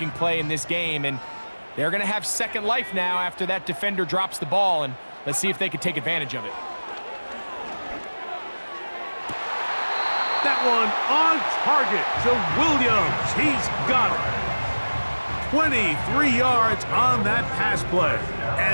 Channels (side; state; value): both; inverted; correlation -1.00